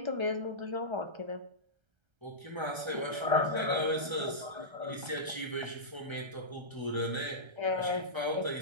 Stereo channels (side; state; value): left; late; 1.3 ms